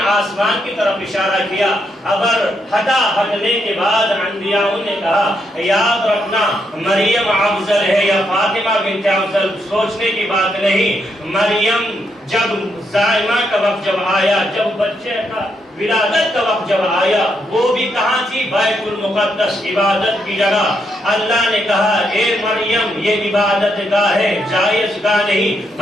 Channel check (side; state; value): both; normal; correlation 0.79